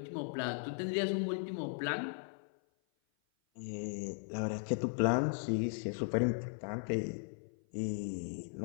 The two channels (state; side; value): silent; right; 53 dB below the other